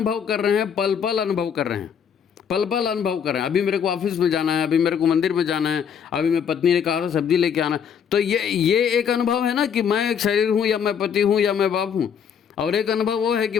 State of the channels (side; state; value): right; quieter; 7.6 dB